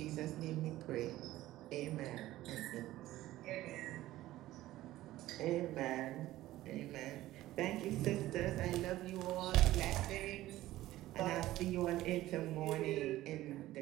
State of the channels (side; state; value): left; quieter; 15.6 dB